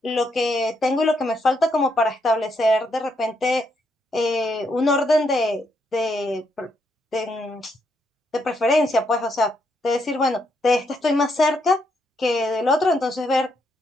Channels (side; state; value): both; normal; correlation 0.77